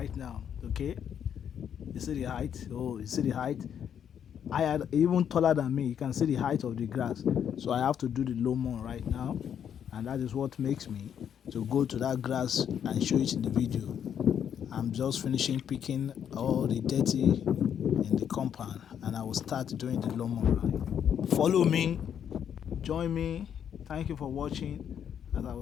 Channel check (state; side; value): quieter; right; 8.7 dB